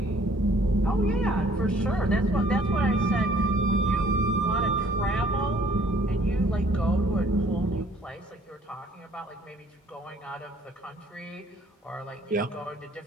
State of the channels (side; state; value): both; normal; correlation 0.59